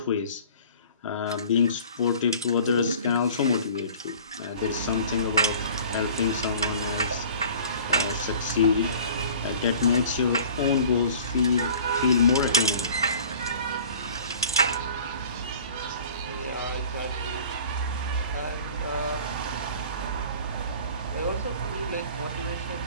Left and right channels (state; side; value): inverted; both; correlation -0.46